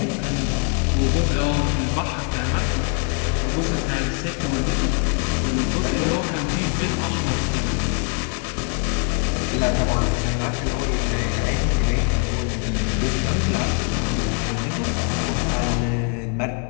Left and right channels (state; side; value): quieter; right; 39.0 dB